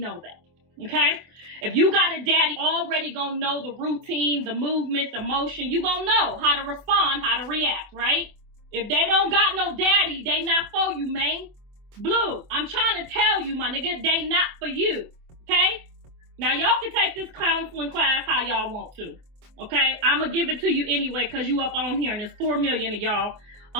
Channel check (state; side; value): late; left; 24 ms